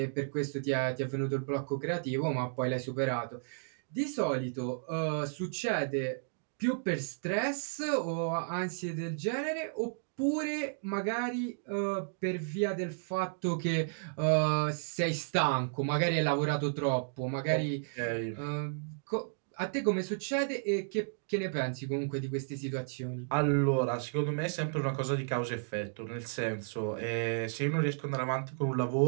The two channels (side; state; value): left; silent; digital silence